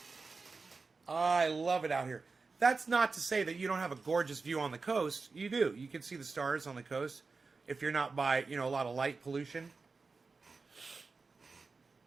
I love it out here. That's not to say that you don't have a gorgeous view on the coast. You do. You can see the stars on the coast if you're not by, you know, a lot of light pollution.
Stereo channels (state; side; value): quieter; left; 4.2 dB